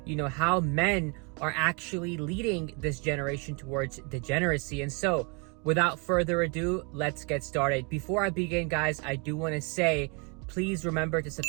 how men are actually leading this generation towards degeneracy. And so, without further ado, let's get started. Before I begin, guys, I do want to say, please remember to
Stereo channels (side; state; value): left; quieter; 33.1 dB